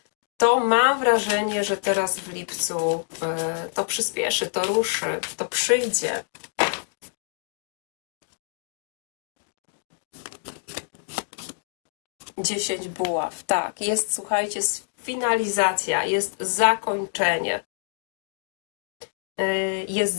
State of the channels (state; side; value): silent; right; digital silence